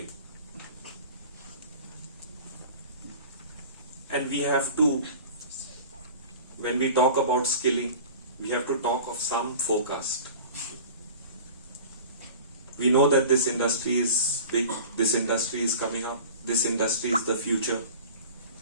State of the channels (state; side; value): inverted; both; correlation -0.40